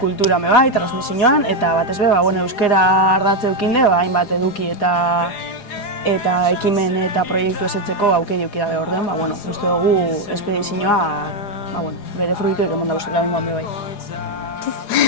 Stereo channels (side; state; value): right; late; 4.8 ms